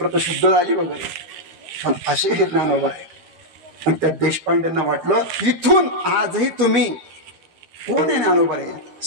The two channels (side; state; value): left; late; 13 ms